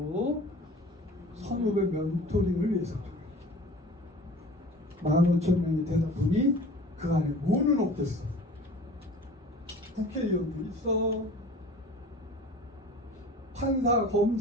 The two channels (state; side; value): normal; both; correlation 0.42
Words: 선후배 멘토링을 위해서 15,000명이 되다 보니 그 안에 뭐는 없겠어. 국회의원도 있어. 판사,